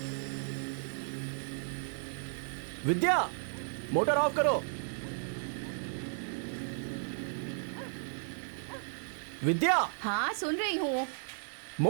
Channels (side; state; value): left; silent; 55 dB below the other